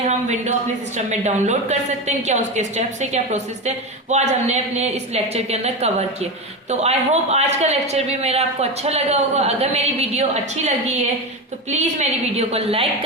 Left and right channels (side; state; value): both; normal; correlation 0.19